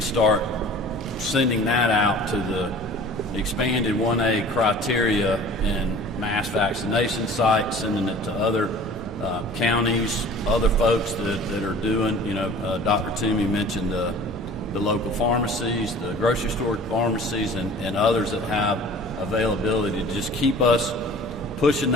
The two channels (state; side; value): normal; both; correlation 0.45